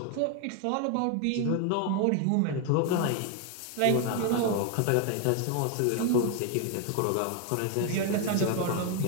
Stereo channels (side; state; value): both; different; correlation 0.01